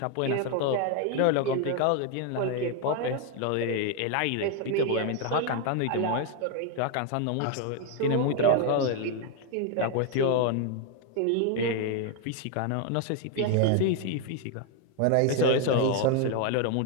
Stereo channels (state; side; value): different; both; correlation 0.01